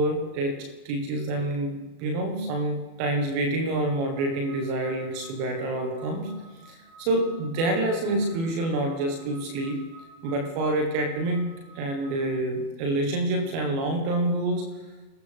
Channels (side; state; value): left; late; 36 ms